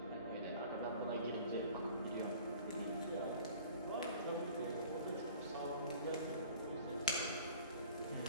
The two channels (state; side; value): inverted; both; correlation -0.47